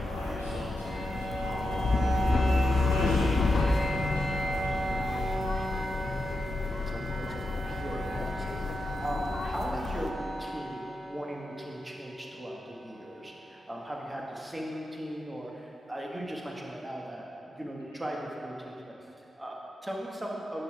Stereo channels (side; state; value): both; normal; correlation 0.88